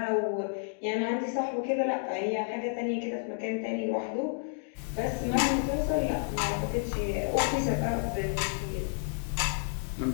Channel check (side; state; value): right; silent; digital silence